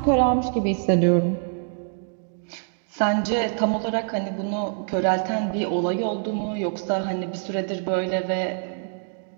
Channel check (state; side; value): silent; left; 62 dB below the other